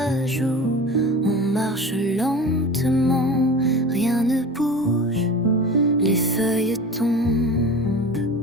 joue. On marche lentement, rien ne bouge. Les feuilles tombent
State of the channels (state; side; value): normal; both; correlation 0.34